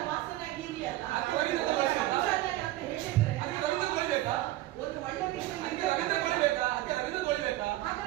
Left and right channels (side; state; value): left; quieter; 16.3 dB